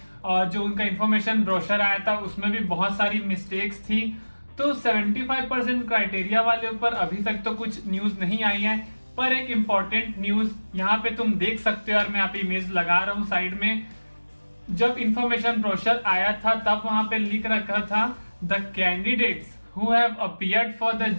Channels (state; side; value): inverted; both; correlation -1.00